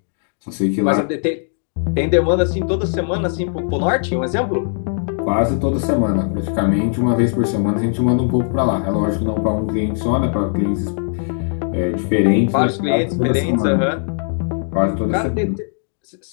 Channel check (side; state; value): right; silent; digital silence